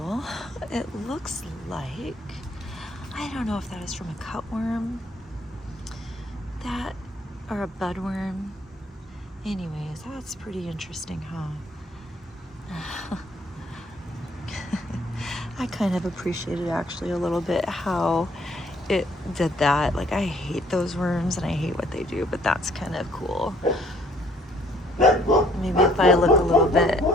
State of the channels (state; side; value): normal; both; correlation 0.62